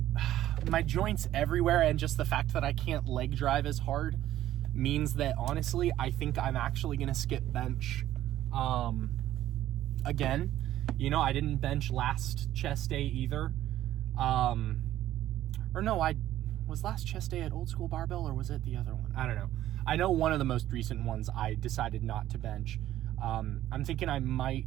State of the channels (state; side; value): quieter; left; 13.3 dB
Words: joints everywhere, and just the fact that I can't leg drive as hard means that, honestly, I think I'm actually going to skip bench again. You know, I didn't bench last chest day either. Or no, was last chest day at Old School Barbell, or was it the other one? I don't know. I know one of the most recent ones I decided not to bench. I'm thinking I